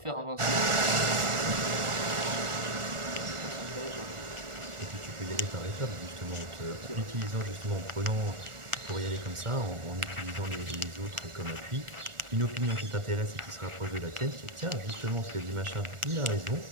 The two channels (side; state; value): left; late; 1.4 ms